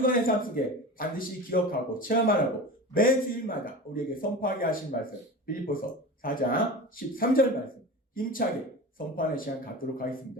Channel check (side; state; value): both; normal; correlation 0.31